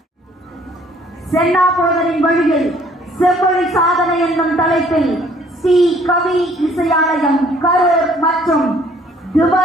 சென்னா போதரின் வழியில் செவ்வழி சாதனை என்னும் தலைப்பில் ஸ்ரீ கவி இசையாலயம் கரூர் மற்றும்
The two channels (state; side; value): normal; both; correlation 0.59